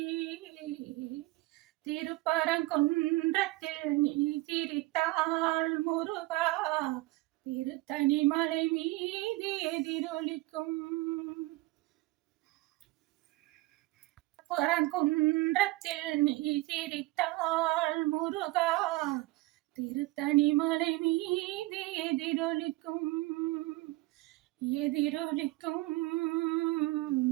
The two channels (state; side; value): quieter; left; 20.3 dB